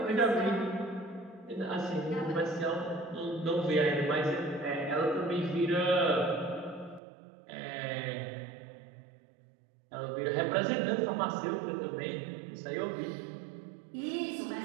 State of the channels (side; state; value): left; drops out; at 7.0 s